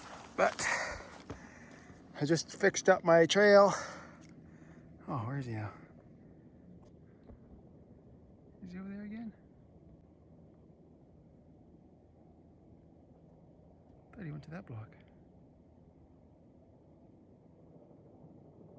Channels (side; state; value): both; identical; correlation 1.00